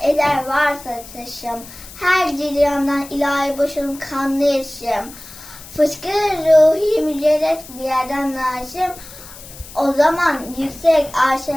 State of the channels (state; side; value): noise; left; hiss, 17 dB below the sound